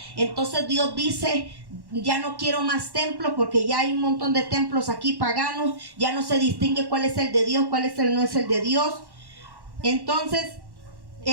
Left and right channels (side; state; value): left; late; 1.1 ms